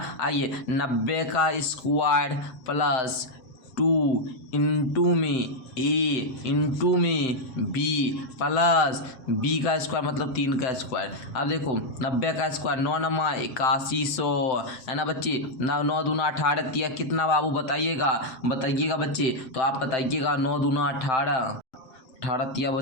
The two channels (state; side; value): late; right; 7.8 ms